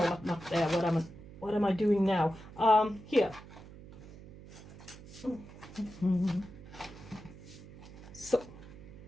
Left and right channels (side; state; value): right; noise; hum, 17 dB below the sound